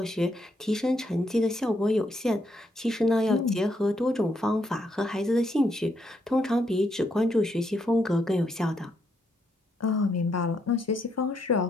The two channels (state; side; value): normal; both; correlation 0.76